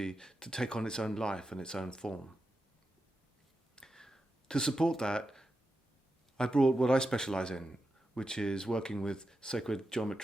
to take on its own life and its own form. To support that, I brought what I specialize in, which is working with sacred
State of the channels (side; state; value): both; normal; correlation 0.89